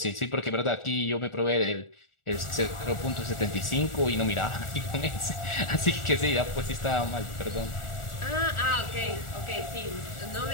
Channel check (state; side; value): late; right; 1.4 ms